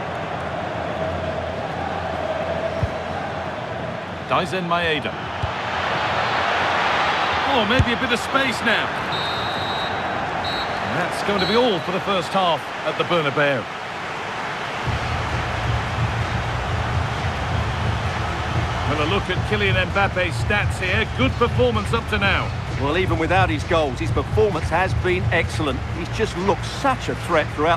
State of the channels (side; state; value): both; identical; correlation 1.00